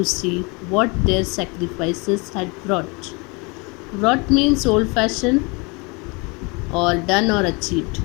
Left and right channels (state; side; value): quieter; right; 29.1 dB